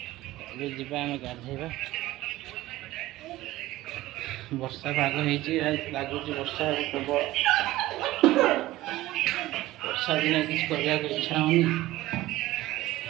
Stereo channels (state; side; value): quieter; left; 16.8 dB